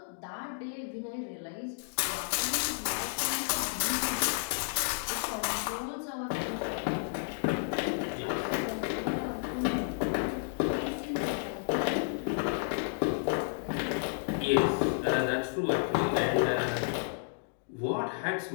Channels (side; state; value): right; silent; digital silence